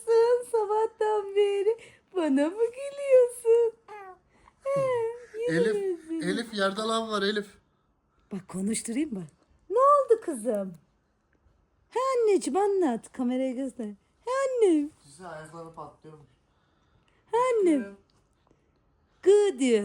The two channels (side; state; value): both; identical; correlation 1.00